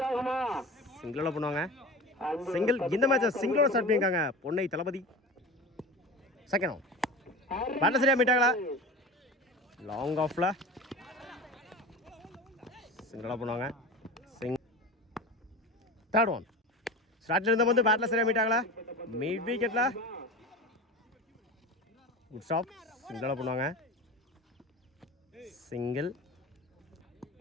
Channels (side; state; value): both; normal; correlation 0.32